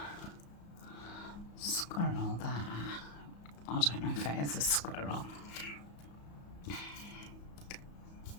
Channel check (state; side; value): late; right; 34 ms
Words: squirrel there. I don't know if it is a squirrel.